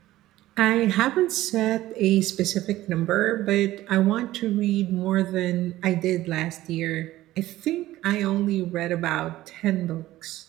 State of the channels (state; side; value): quieter; left; 15.6 dB